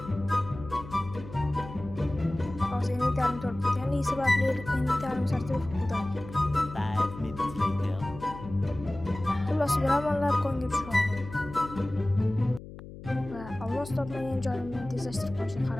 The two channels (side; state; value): left; noise; hum, 14 dB below the sound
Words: Hozir inventarim to'lib ketganligi sababli inventarim sertifikat bo'ldi. 5 minutes later. Xullas, biramonlar konga tushib oldim. Va olmos topmagan joyimni tezlashtirib qo'yishga